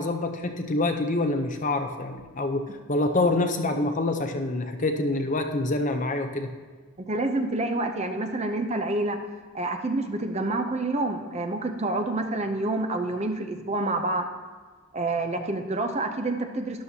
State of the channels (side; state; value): both; normal; correlation 0.32